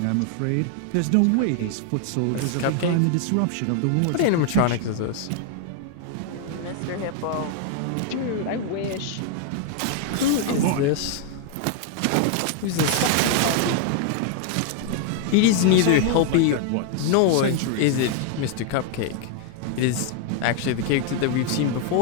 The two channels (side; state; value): both; different; correlation 0.00